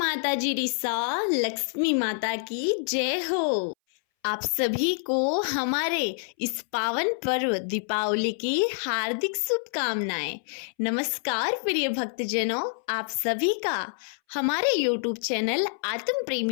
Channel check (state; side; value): silent; right; 60 dB below the other